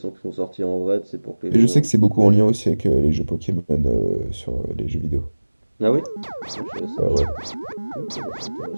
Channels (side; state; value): both; inverted; correlation -1.00